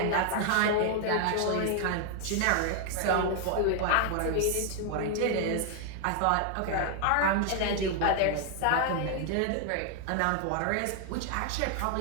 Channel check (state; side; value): different; both; correlation 0.00